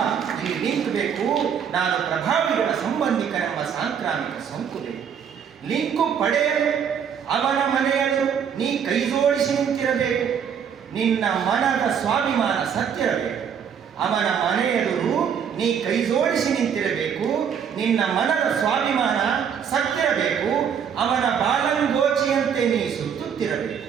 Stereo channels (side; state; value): left; quieter; 7.7 dB